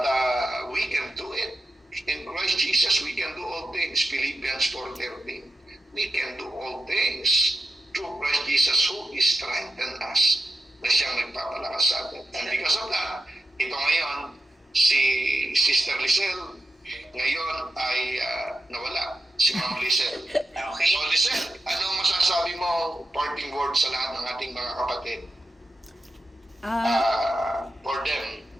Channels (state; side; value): normal; both; correlation 0.88